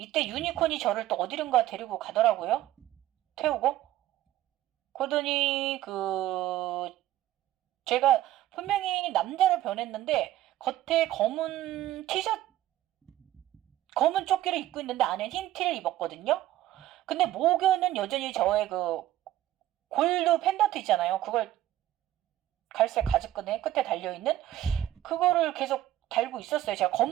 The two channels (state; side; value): quieter; left; 13.8 dB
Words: 유니콘이 저를 또 어디론가 데리고 가더라고요. 태우고. 그러더니 제가 분명히 남자로 변했는데 겉에 검은 티셔츠 검은 조끼를 입고 있는데 안에 흰 티를 입었거든요. 근데 목에는 여전히 저의 골드 펜던트 있잖아요. 그걸 갈색 가죽끈에 끝에 달려있는 그거를 계속 달고 있었어요. 제가